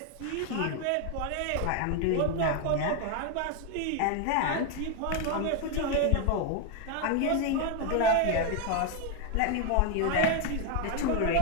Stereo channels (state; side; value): different; both; correlation 0.01